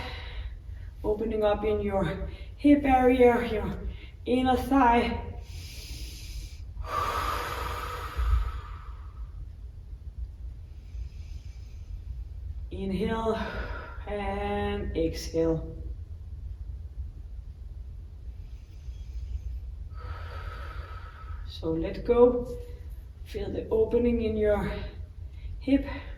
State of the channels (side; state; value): both; identical; correlation 1.00